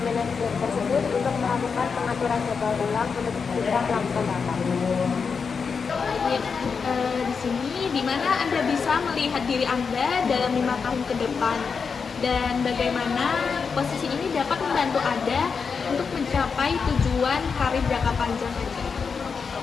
tersebut untuk melakukan pengaturan jadwal ulang untuk kita melakukan rapat. Di sini di mana Anda bisa melihat diri Anda dalam 5 tahun ke depan dan bagaimana posisi ini dapat membantu Anda untuk mencapai tujuan karir jangka panjang Anda.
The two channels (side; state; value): right; quieter; 5.6 dB